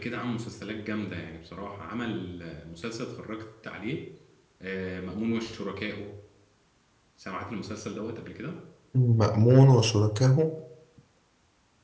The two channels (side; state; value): both; identical; correlation 1.00